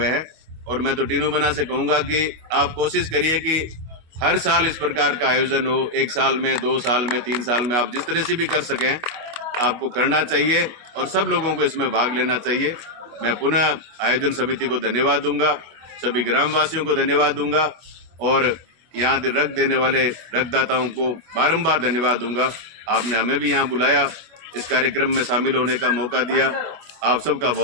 हैं। और मैं तो टीनू बना से कहूँगा कि आप कोशिश करिए कि हर साल इस प्रकार का आयोजन हो, 1 साल में, 2 साल में, 3 साल में, आप जिस तरह से भी कर सकें आपको करना चाहिए और सब लोगों को इसमें भाग लेना चाहिए। मैं पुनः आयोजन समिति को धन्यवाद दूंगा, सभी ग्रामवासियों को धन्यवाद दूंगा और यहाँ रक्त देने वाले रक्तदाताओं को बारंबार धन्यवाद दूंगा। आपने हमें भी यहाँ बुलाया, इस कार्यक्रम में शामिल होने का मौका दिया। आप सबका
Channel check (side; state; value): left; late; 25 ms